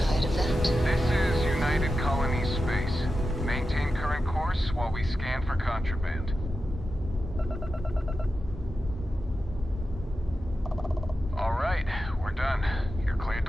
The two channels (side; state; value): both; normal; correlation 0.91